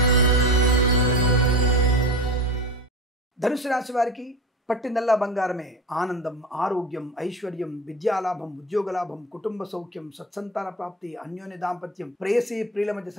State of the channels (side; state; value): both; normal; correlation 0.29